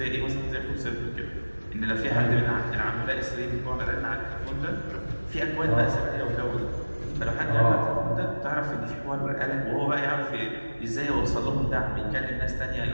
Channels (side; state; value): both; inverted; correlation -1.00